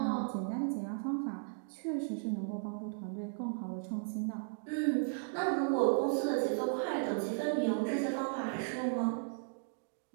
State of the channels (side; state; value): left; silent; digital silence